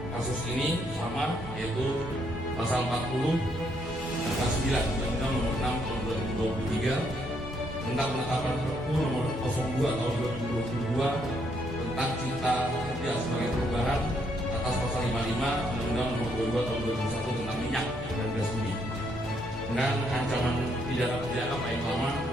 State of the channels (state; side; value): normal; both; correlation 0.72